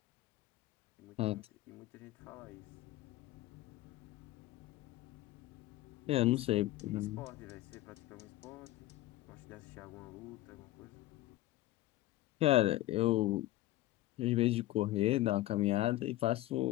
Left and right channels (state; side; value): quieter; right; 16.3 dB